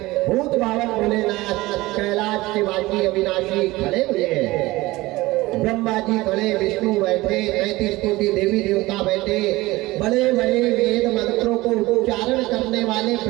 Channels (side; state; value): left; quieter; 19.6 dB